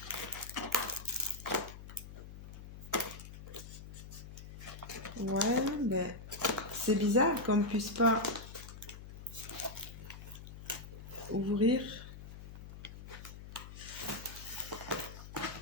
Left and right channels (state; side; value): noise; left; hum, 12 dB below the sound